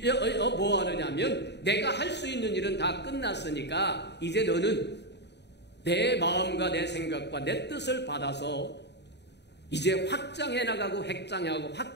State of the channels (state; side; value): late; right; 0.50 ms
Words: 뭐 하느냐면 내가 할 수 있는 일은 다 끝났으니까 이제 너는 내 마음과 내 생각과 내 뜻을 받아서 이제 확장해 나가고 획장하고